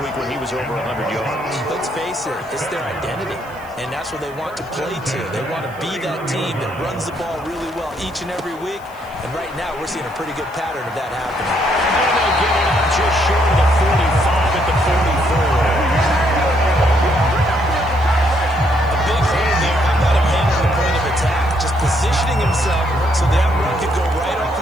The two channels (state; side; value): noise; left; hiss, 26 dB below the sound